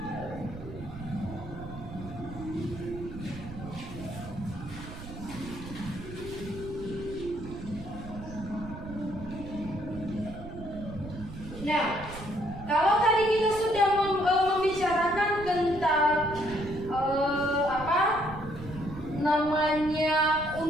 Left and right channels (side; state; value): right; noise; rumble, 12 dB below the sound